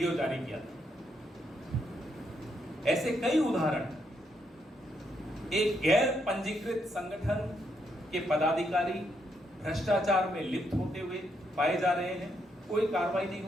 जारी किया था। ऐसे कई उदाहरण, एक गैर पंजीकृत संगठन के पदाधिकारी भ्रष्टाचार में लिप्त होते हुए पाए जा रहे हैं, कोई कार्रवाई नहीं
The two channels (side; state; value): both; normal; correlation 0.77